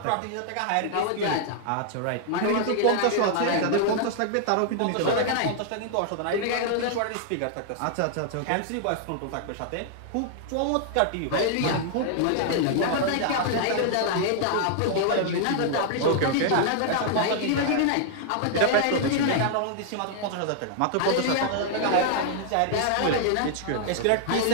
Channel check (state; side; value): different; both; correlation -0.01